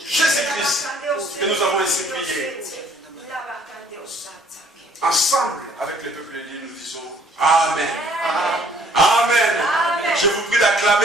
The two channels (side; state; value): both; normal; correlation 0.60